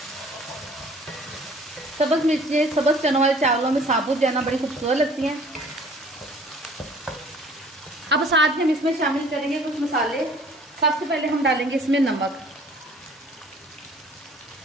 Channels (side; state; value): both; normal; correlation 0.53